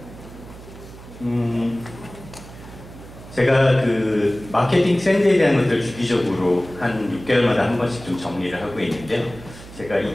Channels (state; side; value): noise; right; hum, 17 dB below the sound